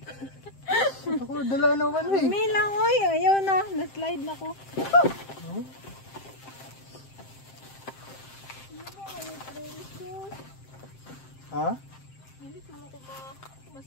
Ako, dala naman eh. May lang, oy. Ayaw na. Na-slide na ko. Ha? Hindi siguro ko ba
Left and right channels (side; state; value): right; late; 7.6 ms